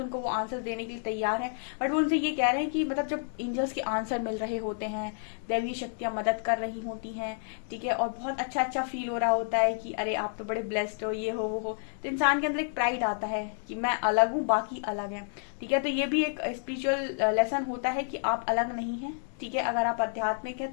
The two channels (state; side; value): silent; right; digital silence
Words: वो आंसर्स देने के लिए तैयार हैं। बट वो उनसे ये कह रहे हैं कि मतलब जब एंजल्स के आंसर मिल रहे होते हैं, दैवीय शक्तियां मदद कर रही होती हैं, ठीक है, और बहुत अच्छा अच्छा फील हो रहा होता है कि अरे आप तो बड़े ब्लेस्ड हो, ये हो वो हो, तो इंसान के अंदर एक प्राइड आता है कि मैं अलग हूँ, बाकी अलग है। ठीक है, तो ये भी एक स्पिरिचुअल लेसन होता है कि आप अलग नहीं है। ठीक है, अगर आप आध्यात्मिक है